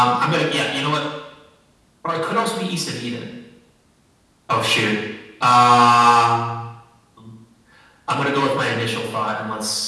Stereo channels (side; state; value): both; identical; correlation 1.00